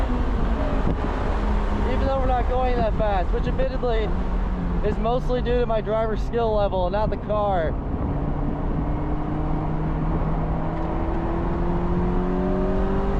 Even though we're not going that fast, which admittedly is mostly due to my driver's skill level, not the car.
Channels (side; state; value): both; identical; correlation 1.00